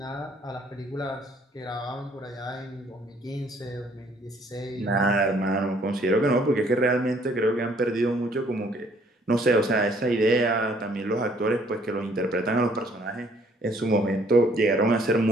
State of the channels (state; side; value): normal; both; correlation 0.62